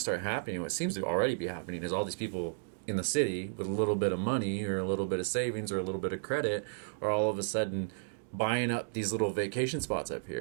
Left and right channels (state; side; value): silent; left; digital silence